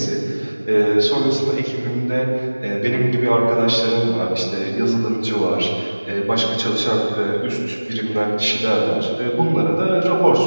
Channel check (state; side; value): inverted; both; correlation -1.00